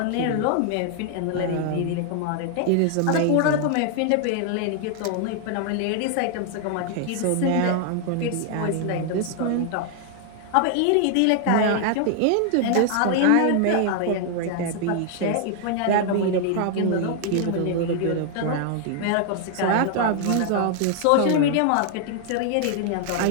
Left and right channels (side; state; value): both; different; correlation 0.00